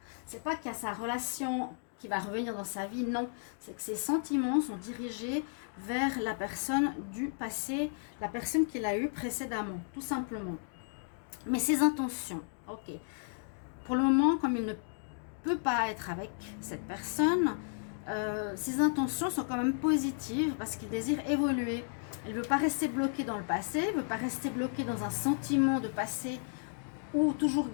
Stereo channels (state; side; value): silent; right; digital silence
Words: sa relation qui va revenir dans sa vie, non. C'est que ces sentiments sont dirigés vers la personne du passé, la personne qu'il a eue précédemment, tout simplement. Mais ses intentions, ok. Pour le moment, comme il ne peut pas être avec cette personne, ses intentions sont quand même positives parce qu'il désire évoluer. Il ne veut pas rester bloqué dans le passé, il ne veut pas rester bloqué dans un sentiment de passé ou toujours